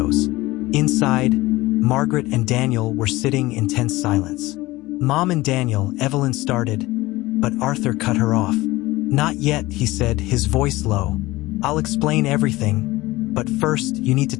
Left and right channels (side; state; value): right; quieter; 19.3 dB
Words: Inside, Margaret and Daniel were sitting in tense silence. Mom and Daniel, Evelyn started, but Arthur cut her off. Not yet, he said, his voice low. I'll explain everything, but first you need to